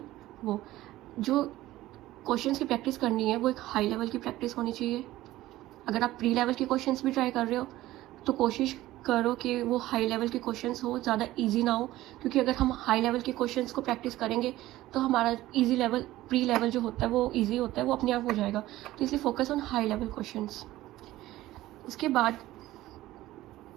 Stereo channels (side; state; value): left; quieter; 16.0 dB